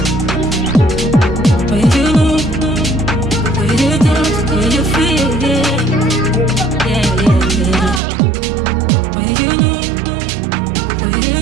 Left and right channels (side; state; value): left; drops out; at 8.0 s